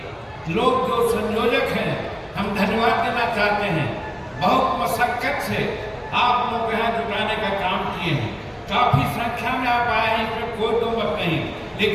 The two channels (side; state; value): both; identical; correlation 1.00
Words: लोग जो संयोजक हैं, हम धन्यवाद देना चाहते हैं। बहुत मशक्कत से आप लोग यहाँ जुटाने का काम किए हैं, काफी संख्या में आप आए हैं, इसमें कोई दो मत नहीं,